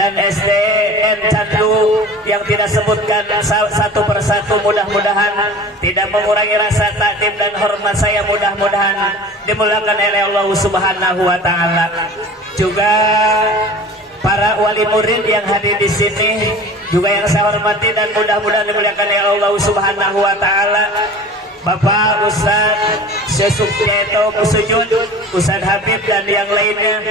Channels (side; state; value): both; normal; correlation 0.40